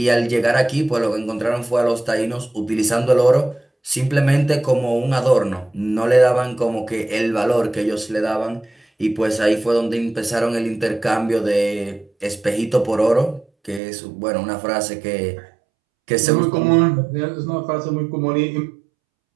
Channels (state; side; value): drops out; left; at 13.8 s